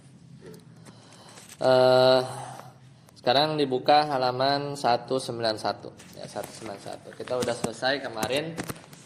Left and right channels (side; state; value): both; identical; correlation 1.00